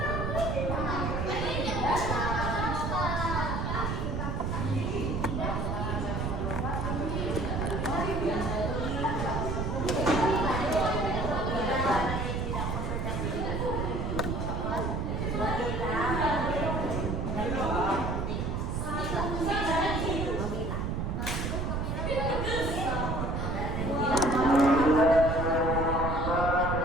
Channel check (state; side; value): noise; right; rumble, 1 dB below the sound